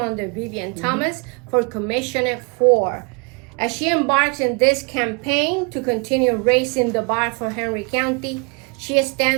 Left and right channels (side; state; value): left; quieter; 31.4 dB